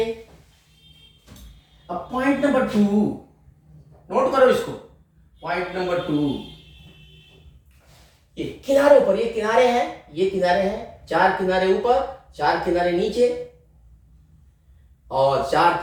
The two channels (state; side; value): identical; both; correlation 1.00